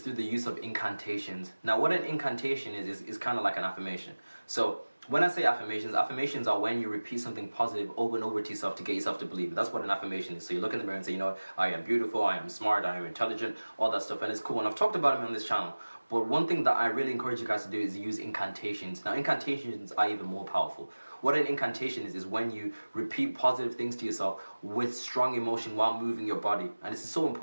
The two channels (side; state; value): both; inverted; correlation -1.00